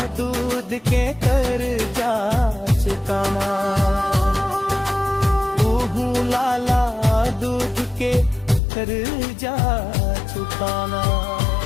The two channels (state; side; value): drops out; right; at 8.6 s